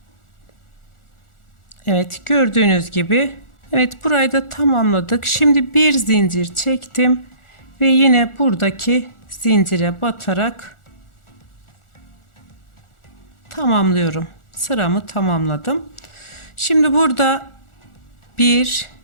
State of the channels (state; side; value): late; right; 1.4 ms